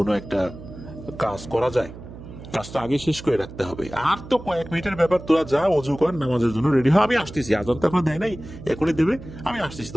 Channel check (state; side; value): noise; right; hum, 14 dB below the sound